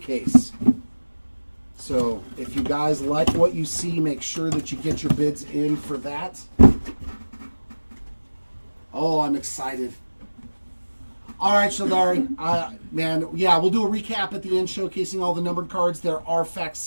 So if you guys like what you see, make sure that you get your bids in for that. Oh, I'm excited. All right, Shaldari. Man, yeah, we'll do a recap at the end showcasing all the numbered cards. There are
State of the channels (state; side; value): inverted; both; correlation -1.00